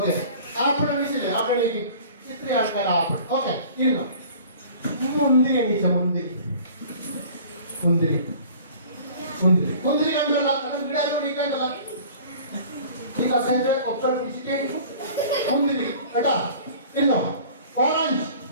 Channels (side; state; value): both; inverted; correlation -0.46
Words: apple എണീച്ചില്ലേ? ആപ്പിൾ എണീക്കും. ഇത്രയും ആൾക്കാർ ആപ്പിൾ. ഓക്കെ, ഇരുന്നോ. മുന്തിരി എണീച്ച മുന്തിരി മുന്തിരി മുന്തിരി മുന്തിരി കണ്ടല്ല. വീടാരും എണീക്കേണ്ടല്ല. ഈ കസേര ഒപ്പം പിടിച്ചിട്ട് മുന്തിരി കേട്ടാ. ഇരുന്നോ. ഓറഞ്ച്.